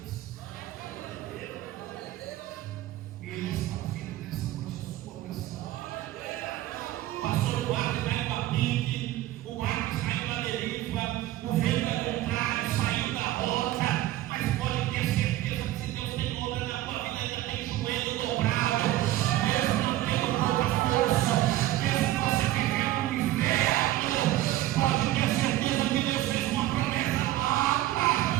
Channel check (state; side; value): quieter; left; 15.1 dB